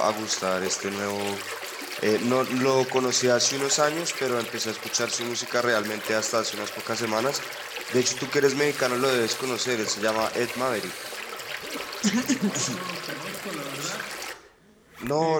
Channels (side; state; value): both; identical; correlation 1.00